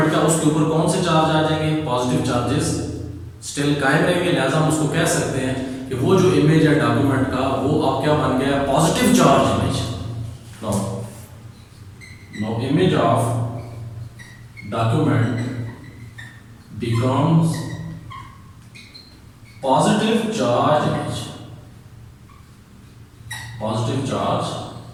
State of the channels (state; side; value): identical; both; correlation 1.00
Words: का, उसके ऊपर कौन से चार्ज आ जाएंगे, पॉजिटिव चार्जेस स्टिल कायम रहेंगे। लिहाजा हम उसको कह सकते हैं कि वो जो इमेज है डॉक्यूमेंट का, वो आप क्या बन गया, positive charge image. No image of document becomes positive charge image, positive charge